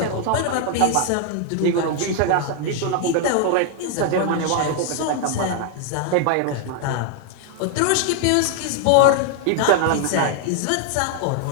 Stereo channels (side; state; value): both; different; correlation 0.00